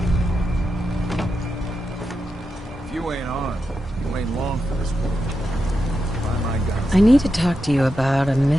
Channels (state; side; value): normal; both; correlation 0.87